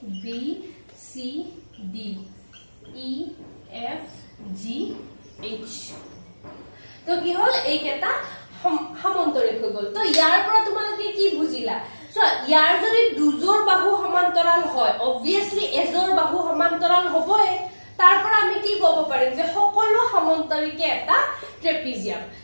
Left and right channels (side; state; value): both; inverted; correlation -1.00